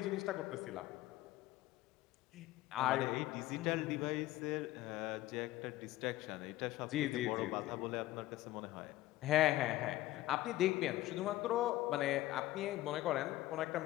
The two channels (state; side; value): quieter; right; 16.1 dB